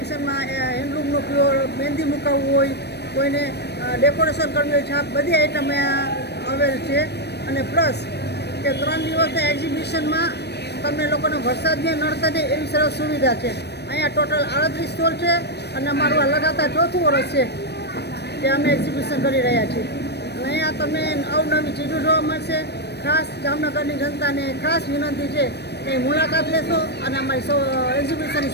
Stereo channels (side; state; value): right; late; 0.49 ms